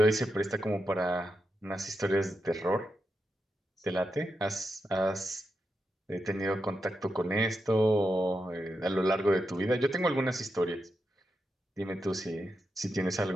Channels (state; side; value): normal; both; correlation 0.87